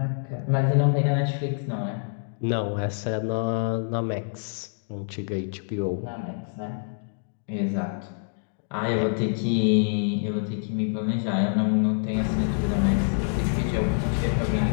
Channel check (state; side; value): silent; right; digital silence